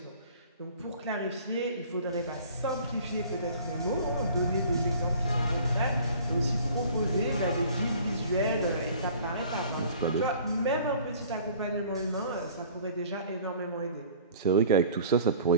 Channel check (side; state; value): both; inverted; correlation -0.48